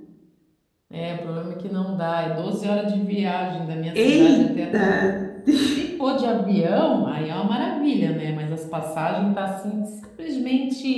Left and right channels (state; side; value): identical; both; correlation 1.00